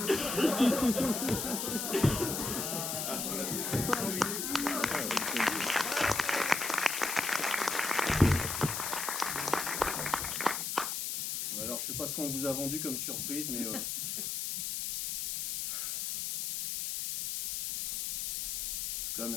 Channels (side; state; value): left; noise; hiss, 2 dB below the sound